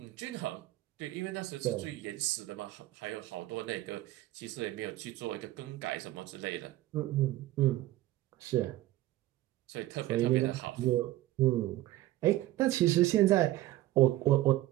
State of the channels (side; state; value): left; quieter; 15.9 dB